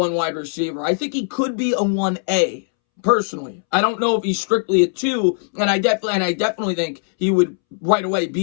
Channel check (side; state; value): right; silent; 66 dB below the other